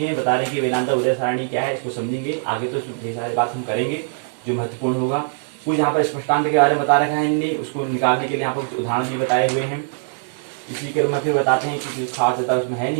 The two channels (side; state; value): left; silent; 60 dB below the other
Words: बता रहे हैं कि वेदांता उदय सारणी क्या है, इसको समझेंगे आगे, तो ढेर सारी बात हम करेंगे जो महत्वपूर्ण होगा। कुछ यहाँ पर स्पष्टांत के बारे में बता रखा है इनने, उसको निकालने के लिए यहाँ पर उदाहरण भी बताए हुए हैं। इसी क्रम में फिर बताते हैं कि खास ज्यादा उसमें है